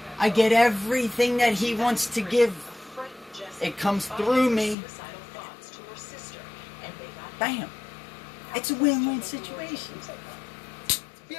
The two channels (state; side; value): drops out; right; at 4.8 s